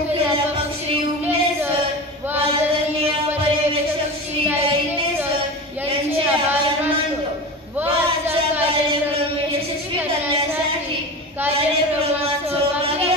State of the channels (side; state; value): both; normal; correlation 0.29